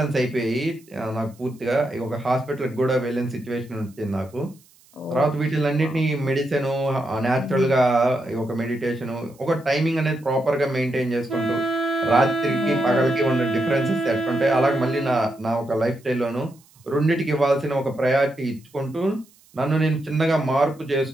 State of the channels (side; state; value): right; noise; hiss, 29 dB below the sound